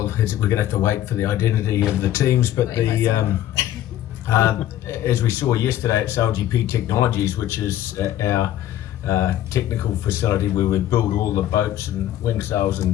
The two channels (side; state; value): right; quieter; 12.5 dB